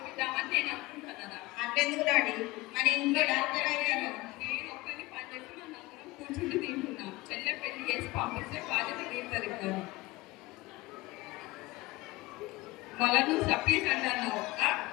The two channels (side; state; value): right; quieter; 20.9 dB